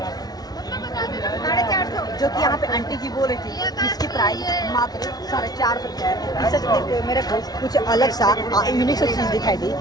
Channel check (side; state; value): right; late; 0.19 ms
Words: 450, जो कि यहाँ पे आंटी जी बोल रही थी इसकी प्राइस मात्र 450 रुपया है। इसे देखते हुए मेरे को कुछ अलग सा यूनिक सा चीज़ दिखाई दी।